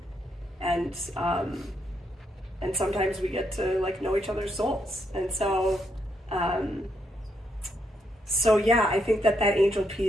and sometimes we get to like know each other's souls. And so yeah, I think that angel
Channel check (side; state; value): both; normal; correlation 0.78